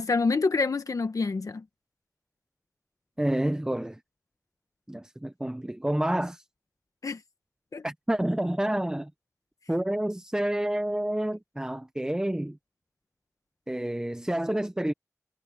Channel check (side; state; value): both; normal; correlation 0.91